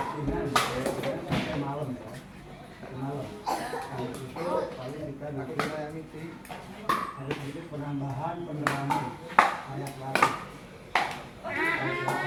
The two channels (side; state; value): both; identical; correlation 1.00